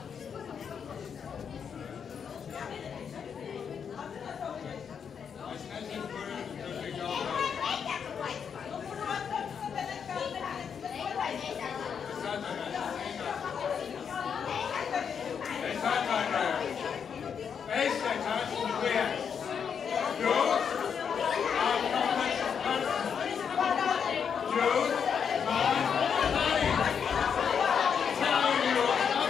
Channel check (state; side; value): quieter; right; 7.1 dB